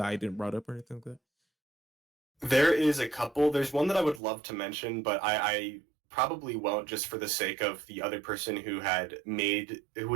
I didn't brought up or anything like that? There is a couple. There's one that I would love to mention, but I probably won't just for the sake of the other person who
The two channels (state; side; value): drops out; left; at 4.2 s